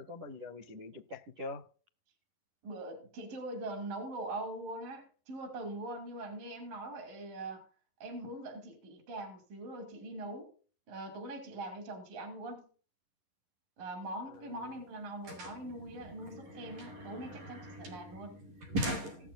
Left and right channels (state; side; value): late; left; 11 ms